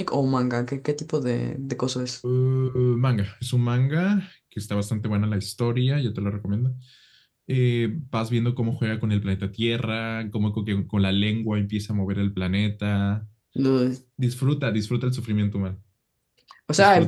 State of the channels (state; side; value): identical; both; correlation 1.00